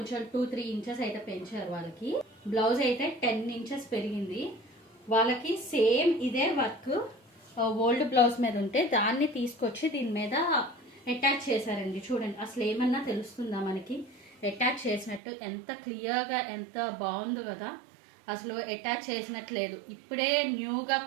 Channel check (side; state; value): left; drops out; at 15.2 s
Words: 2-3 ఇంచెస్ అయితే పెంచారు వాళ్ళకి. బ్లౌజ్ అయితే 10 ఇంచెస్ పెరిగింది వాళ్ళకి. సేమ్ ఇదే వర్క్ ఓల్డ్ బ్లౌజ్ మీద ఉంటే దాన్ని తీసుకొచ్చి దీని మీద అటాచ్ చేశారండి. చూడండి, అసలు ఏమన్నా తెలుస్తుందా మనకి అటాచ్ చేసినట్టు? ఎంత క్లియర్గా, ఎంత బాగుందో కదా. అసలు అటాచ్ చేసినట్టు లేదు, ఇప్పుడే న్యూగా